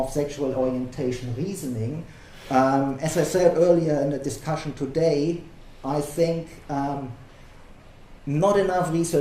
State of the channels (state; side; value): identical; both; correlation 1.00